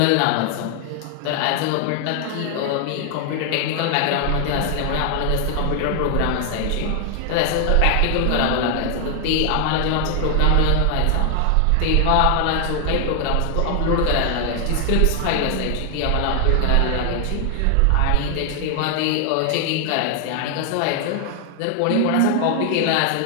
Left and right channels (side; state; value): both; different; correlation 0.00